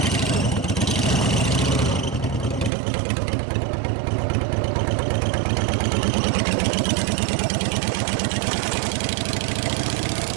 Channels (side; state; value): left; drops out; at 2.7 s